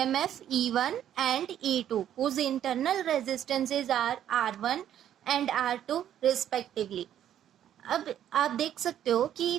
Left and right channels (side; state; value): left; quieter; 10.6 dB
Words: E1 एंड E2 whose internal resistances are R1 and R2 respectively। अब आप देख सकते हो कि